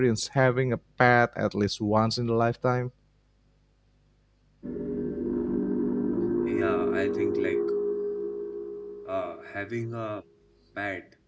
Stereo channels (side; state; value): both; identical; correlation 1.00